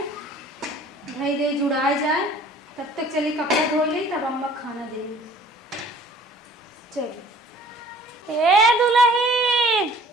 भाई दे जुड़ाए जाए तब तक चली कपड़ा धो ले तब अम्मा खाना दे चल ए दुल्हन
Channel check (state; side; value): normal; both; correlation 0.51